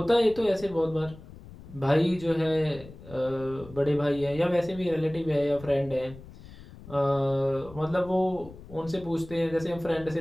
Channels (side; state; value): left; noise; rumble, 18 dB below the sound